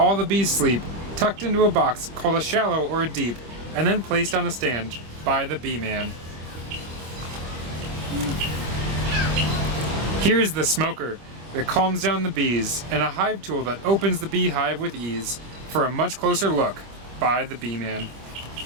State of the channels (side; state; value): left; late; 25 ms